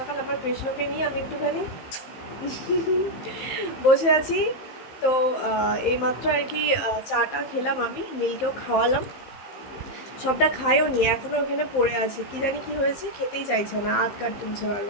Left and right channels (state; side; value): late; right; 15 ms